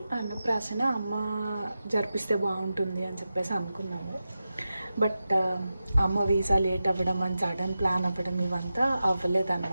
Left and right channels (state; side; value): inverted; both; correlation -0.91